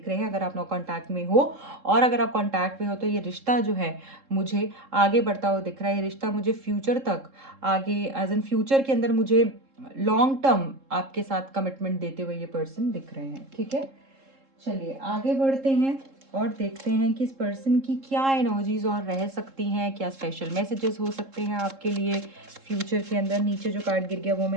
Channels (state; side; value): late; left; 3.7 ms